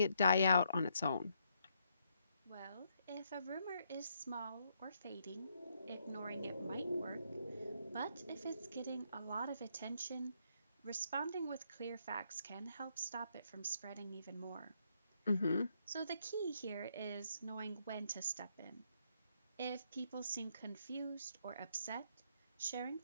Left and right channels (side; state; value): both; inverted; correlation -0.75